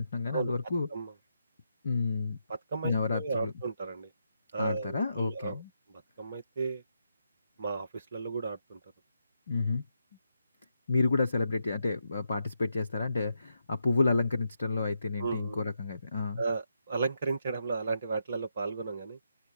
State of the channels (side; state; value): both; inverted; correlation -0.82